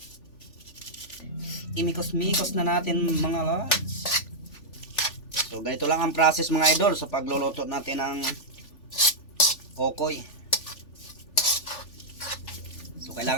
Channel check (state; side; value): late; right; 3.4 ms